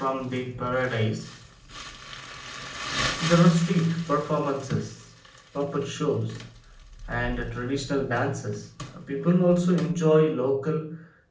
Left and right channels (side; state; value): both; identical; correlation 1.00